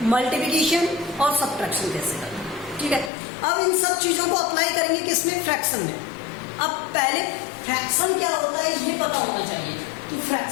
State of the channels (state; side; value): drops out; right; at 3.1 s